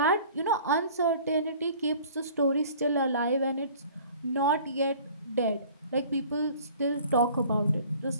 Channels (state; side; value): inverted; both; correlation -0.49